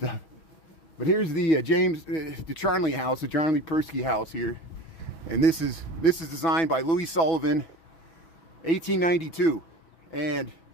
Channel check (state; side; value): late; right; 6.1 ms